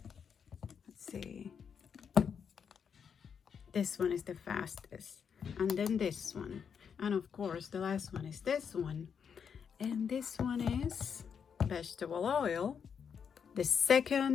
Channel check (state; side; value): quieter; right; 7.0 dB